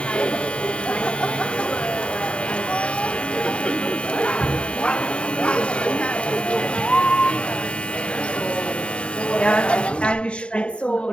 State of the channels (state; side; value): late; right; 0.055 ms